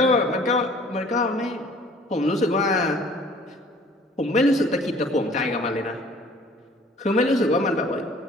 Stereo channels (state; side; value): normal; both; correlation 0.52